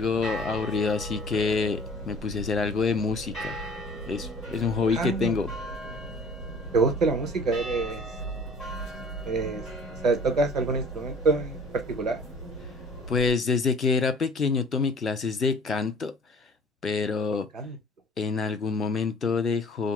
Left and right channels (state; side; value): normal; both; correlation 0.49